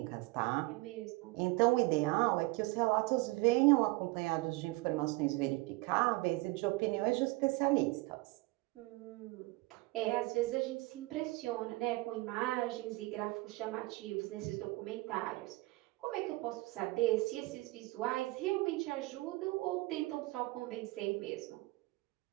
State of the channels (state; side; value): quieter; left; 22.6 dB